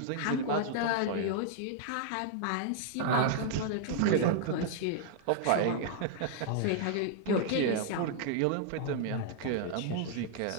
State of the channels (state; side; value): different; both; correlation -0.01